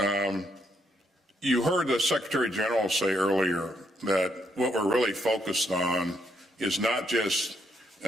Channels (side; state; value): both; normal; correlation 0.75